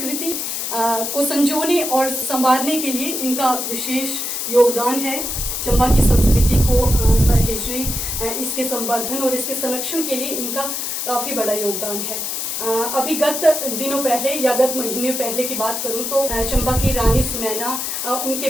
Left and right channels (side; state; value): left; noise; hiss, 3 dB below the sound